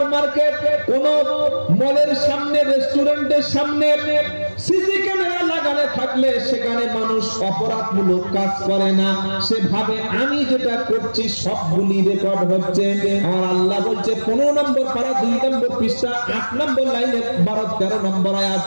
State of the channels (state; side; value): inverted; both; correlation -1.00